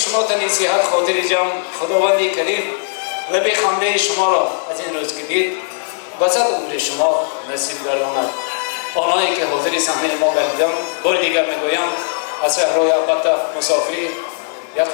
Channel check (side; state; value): right; silent; 68 dB below the other